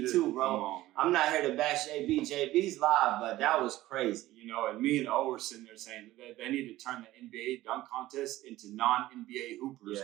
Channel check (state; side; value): quieter; left; 16.1 dB